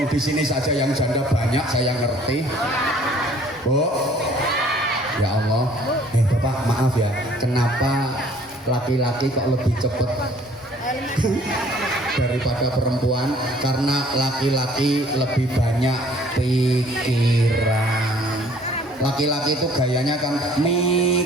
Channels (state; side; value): normal; both; correlation 0.56